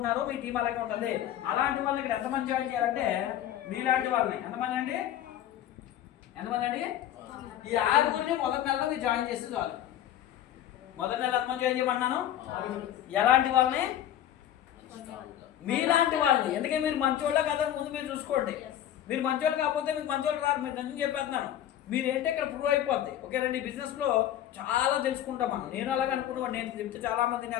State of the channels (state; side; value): quieter; right; 11.5 dB